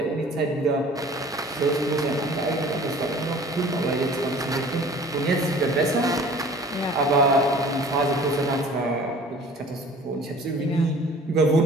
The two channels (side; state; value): both; normal; correlation 0.47